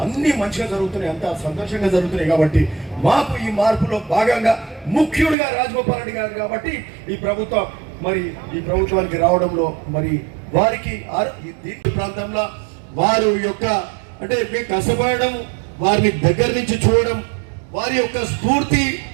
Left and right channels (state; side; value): drops out; left; at 5.4 s